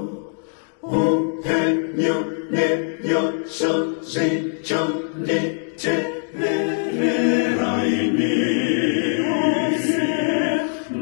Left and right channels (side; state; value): right; silent; digital silence